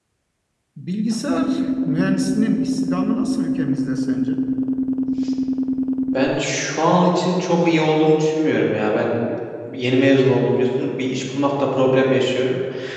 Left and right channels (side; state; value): both; identical; correlation 1.00